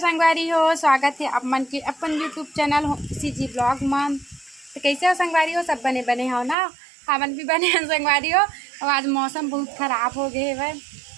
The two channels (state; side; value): drops out; left; at 6.6 s